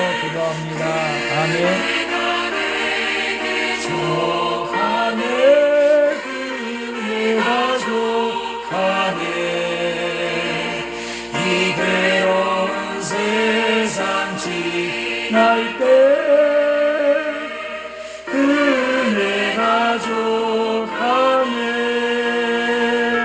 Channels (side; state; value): both; identical; correlation 1.00